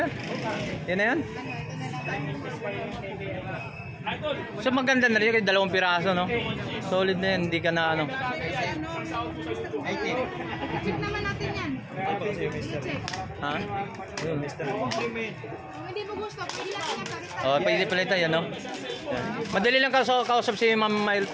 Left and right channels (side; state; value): both; identical; correlation 1.00